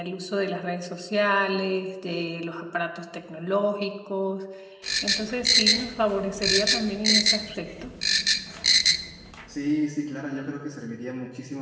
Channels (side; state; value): both; identical; correlation 1.00